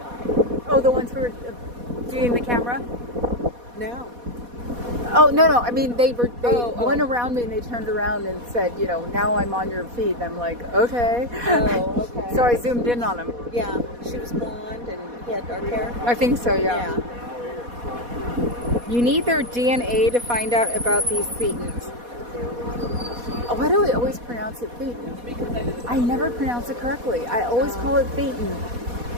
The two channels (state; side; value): late; left; 4.2 ms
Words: Oh, the ones who were doing the camera? by. No. Oh, no, I mean, they Oh. went around me and they turned around and said, you know, now I'm on your feed. And I'm like, okay. Oh, okay. So I zoomed in on him. Yeah, she was blonde and he had dark hair. I think so, yeah. You need their DNA to find out about these thetans. Oh, why do I always pronounce it thetan? I never pronounce it correctly. I always call it thetan.